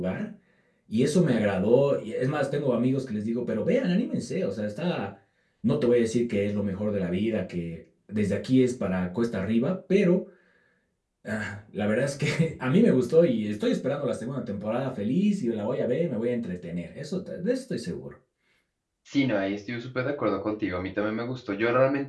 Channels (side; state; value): both; identical; correlation 1.00